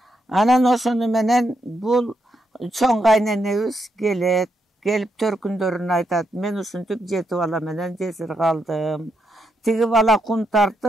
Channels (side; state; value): both; normal; correlation 0.81